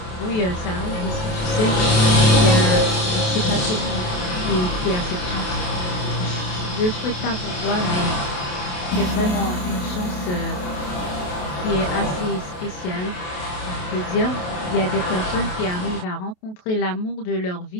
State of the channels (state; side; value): late; right; 28 ms